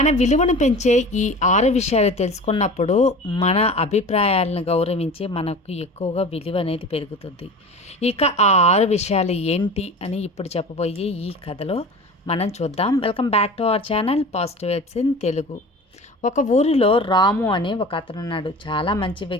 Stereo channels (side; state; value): both; normal; correlation 0.36